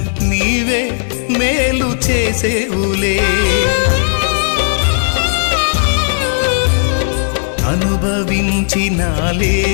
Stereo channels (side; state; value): right; silent; digital silence